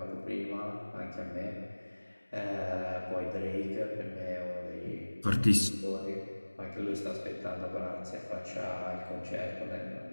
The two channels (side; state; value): both; inverted; correlation -1.00